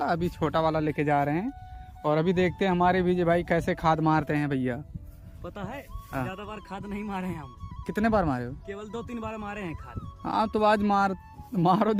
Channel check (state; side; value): identical; both; correlation 1.00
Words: अभी छोटा वाला लेके जा रहे हैं। और अभी देखते हैं हमारे विजय भाई कैसे खाद मारते हैं भैया। पता है, हाँ। ज्यादा बार खाद नहीं मारे हैं हम। कितने बार मारे हो? केवल 2-3 बार मारे हैं खाद। हाँ, तो आज मारो